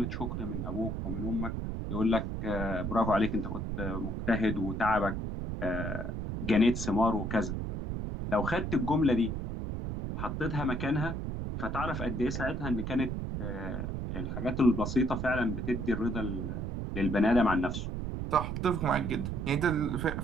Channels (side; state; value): right; noise; rumble, 3 dB below the sound